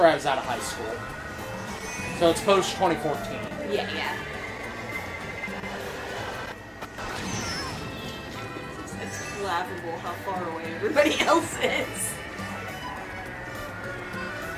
I was out of high school. So it's post 2014. Yeah. It's laughable how far away everybody else is.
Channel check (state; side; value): identical; both; correlation 1.00